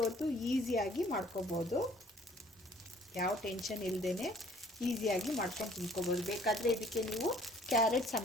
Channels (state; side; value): normal; both; correlation 0.57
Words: ಹೊತ್ತು ಈಸಿಯಾಗಿ ಮಾಡ್ಕೋಬೋದು, ಯಾವ ಟೆನ್ಷನ್ ಇಲ್ಲದೇ ಈಸಿಯಾಗಿ ಮಾಡ್ಕೊಂಡು ತಿನ್ಕೋಬೋದು. ಬೇಕಾದರೆ ಇದಕ್ಕೆ ನೀವು ಕ್ಯಾರೆಟ್